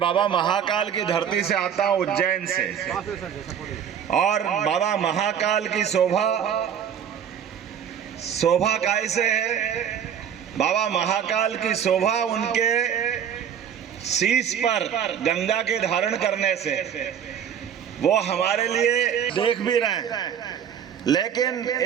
महाकाल की धरती से आता हूँ, उज्जैन से, और बाबा महाकाल की शोभा कैसे है? बाबा महाकाल की शोभा उनके शीश पर गंगा के धारण करने से, वो हमारे लिए देख भी रहे हैं। लेकिन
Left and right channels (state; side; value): quieter; left; 8.6 dB